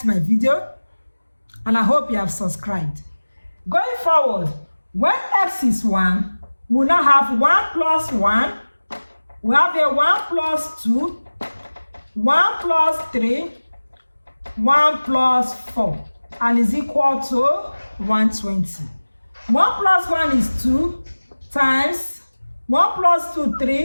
my video and I hope you have subscribed. Going forward, when x is 1, we now have 1 plus 1. We have a 1 plus 2, 1 plus 3, 1 plus 4, and is equal to 120. 1 plus 1 is 2 times 1 plus 2,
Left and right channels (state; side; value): inverted; both; correlation -1.00